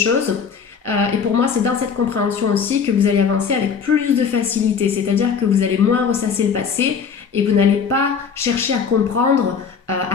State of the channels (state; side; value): quieter; right; 6.4 dB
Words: et pour moi c'est dans cette compréhension aussi que vous allez avancer avec plus de facilité, c'est-à-dire que vous allez moins ressasser le passé et vous n'allez pas chercher à comprendre à